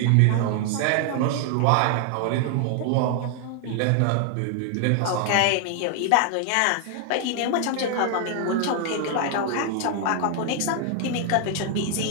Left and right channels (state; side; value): different; both; correlation 0.00